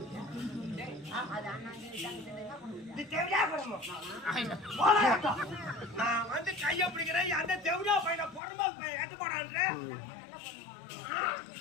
நான் வந்து கைய பிடிக்கிறேன் அந்த தெவிடா பையனை பொறுமா எட்டு போடான்ற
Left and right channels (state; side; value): drops out; right; at 8.4 s